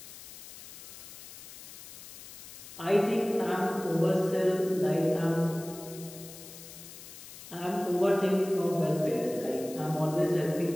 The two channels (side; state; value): left; noise; hiss, 15 dB below the sound